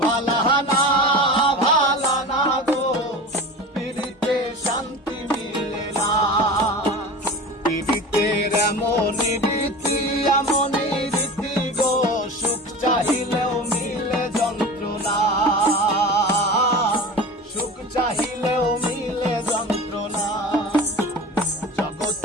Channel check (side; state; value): both; normal; correlation 0.33